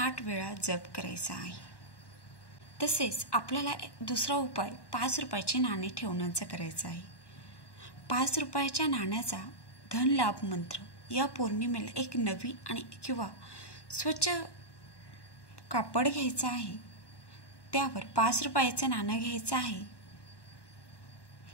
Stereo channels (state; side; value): late; right; 1.1 ms